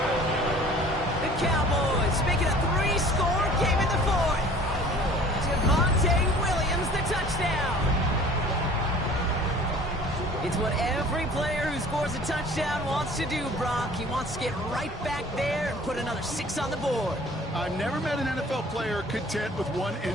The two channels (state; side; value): normal; both; correlation 0.48